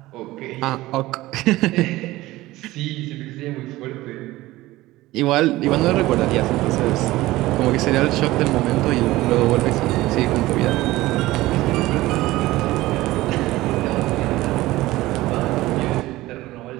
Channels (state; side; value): quieter; left; 17.8 dB